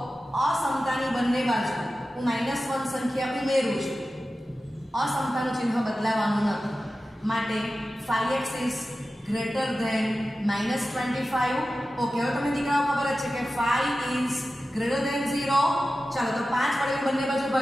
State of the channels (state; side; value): normal; both; correlation 0.94